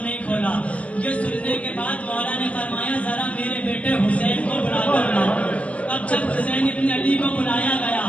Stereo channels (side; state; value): right; late; 0.064 ms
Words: کھولا۔ یہ سننے کے بعد مولا نے فرمایا، ذرا میرے بیٹے حسین کو بلا کر لاؤ۔ اب جب حسین ابن علی کو بلایا گیا،